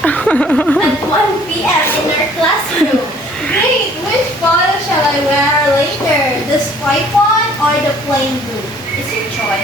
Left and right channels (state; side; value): normal; both; correlation 0.56